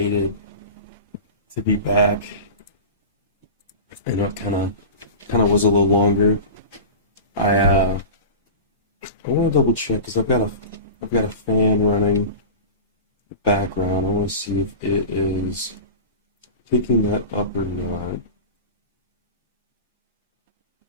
to be back. I know it kind of was a little longer. I want to double check because I've got a fan running in the background. I want to see if it is picking that up or not.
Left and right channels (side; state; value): both; inverted; correlation -0.30